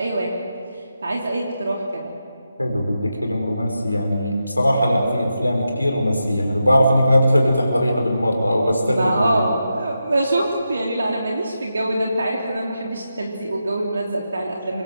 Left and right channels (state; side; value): inverted; both; correlation -0.87